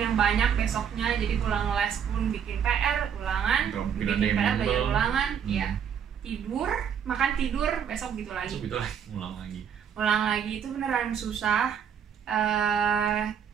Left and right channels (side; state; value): left; quieter; 8.0 dB